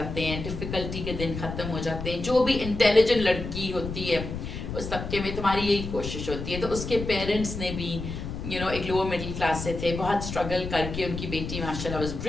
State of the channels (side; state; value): left; noise; rumble, 6 dB below the sound